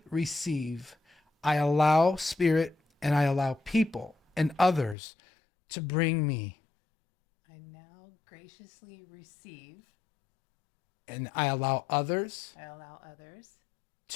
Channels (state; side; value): drops out; right; at 5.0 s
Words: receive. I allow Spirit and I allow people and others to bring me. I now graciously receive. And I allow others.